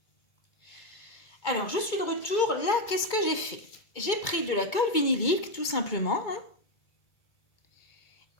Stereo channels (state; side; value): late; right; 1.9 ms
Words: Alors je suis de retour, là qu'est-ce que j'ai fait? J'ai pris de la colle vinylique tout simplement, hein,